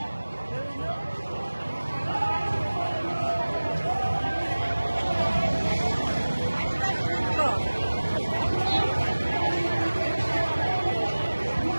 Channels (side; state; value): both; inverted; correlation -1.00